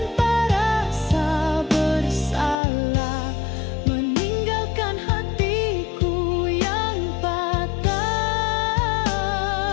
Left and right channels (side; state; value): right; drops out; at 2.6 s